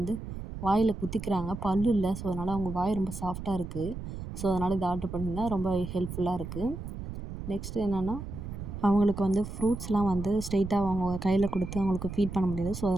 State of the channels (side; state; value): right; noise; rumble, 8 dB below the sound